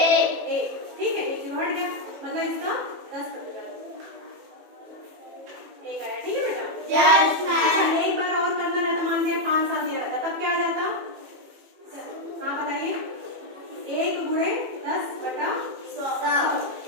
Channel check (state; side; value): late; left; 18 ms